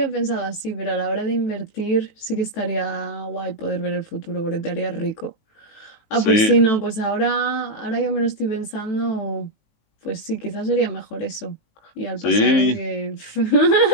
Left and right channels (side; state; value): right; late; 18 ms